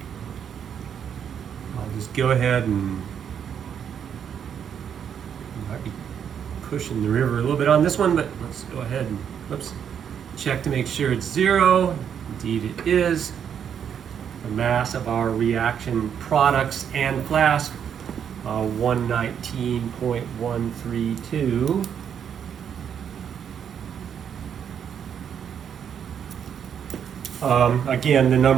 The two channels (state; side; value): quieter; left; 8.2 dB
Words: I'll just go ahead and might be pushing the river a little bit on this one, but let's go ahead and check to make sure it's 0. Indeed it is. The mass of our reaction products and flask, 119.132. Again, the